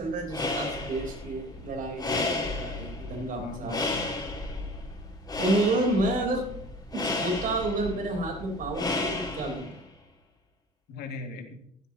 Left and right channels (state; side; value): normal; both; correlation 0.41